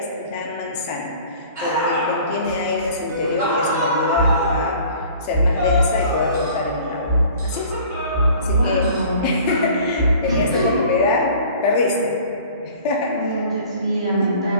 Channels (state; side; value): inverted; both; correlation -0.48